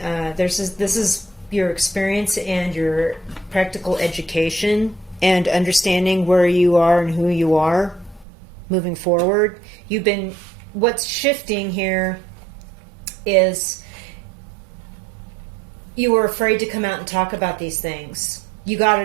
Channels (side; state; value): left; drops out; at 8.2 s